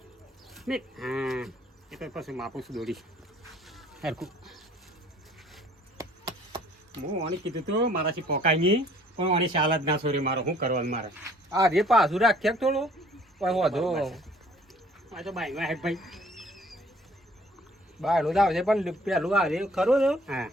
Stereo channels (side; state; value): both; normal; correlation 0.56